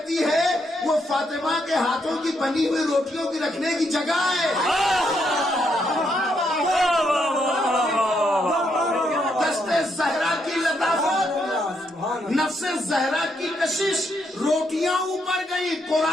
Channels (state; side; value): normal; both; correlation 0.77